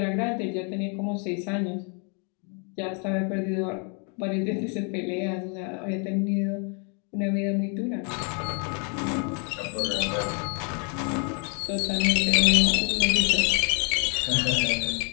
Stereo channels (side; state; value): right; quieter; 37.8 dB